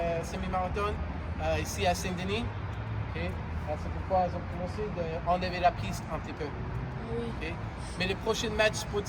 ici à Saint-Denis. Okay. C'est pourquoi ils ont commencé d'enlever la piste un petit peu. Okay. Mais le prochain match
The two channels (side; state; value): both; identical; correlation 1.00